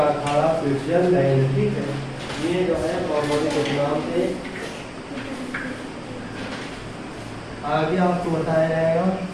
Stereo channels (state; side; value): identical; both; correlation 1.00